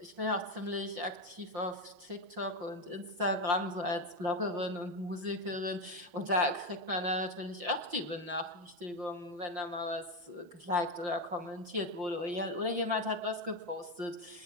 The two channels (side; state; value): left; late; 5.7 ms